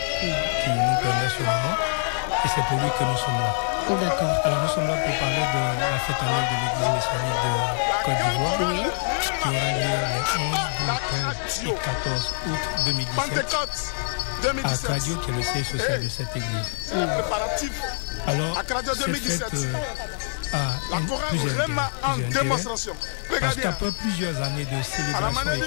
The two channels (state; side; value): silent; right; digital silence